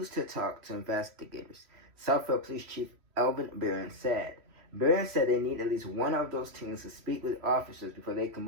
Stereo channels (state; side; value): late; left; 3.1 ms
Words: to talk to investigators, Southfield Police Chief Elvin Barron said. Barron said they need at least one of those teams to speak with officers before they can